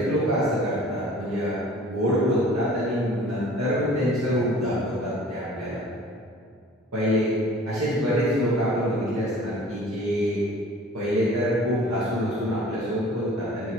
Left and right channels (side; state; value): both; normal; correlation 0.47